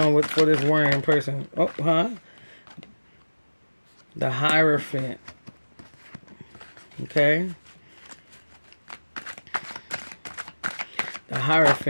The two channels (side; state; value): both; inverted; correlation -1.00